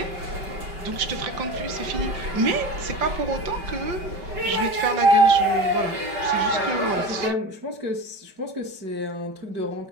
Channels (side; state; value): left; late; 5.2 ms